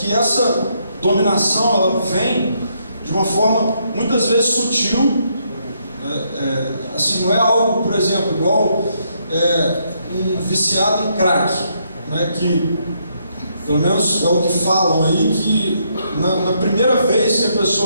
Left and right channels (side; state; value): both; inverted; correlation -0.75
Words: essa dominação ela vem de uma forma muitas vezes sutil. Assim, não é algo, por exemplo, igual um viciado em crack, que pelo menos é o que falam aí, que na primeira vez que a